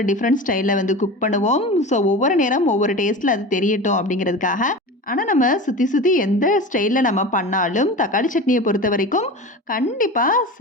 டிஃபரண்ட் ஸ்டைல்ல வந்து குக் பண்ணுவோம். ஸோ ஒவ்வொரு நேரம் ஒவ்வொரு டேஸ்ட்ல அது தெரியட்டும் அப்படிங்கிறதுக்காக. ஆனா நம்ம சுத்தி சுத்தி எந்த ஸ்டைல்ல நம்ம பண்ணாலும், தக்காளி சட்னிய பொறுத்தவரைக்கும் கண்டிப்பா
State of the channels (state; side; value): normal; both; correlation 0.30